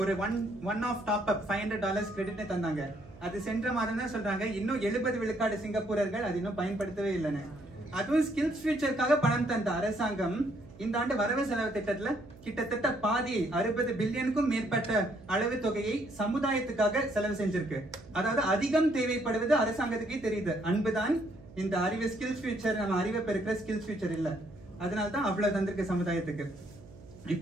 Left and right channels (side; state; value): right; noise; hum, 20 dB below the sound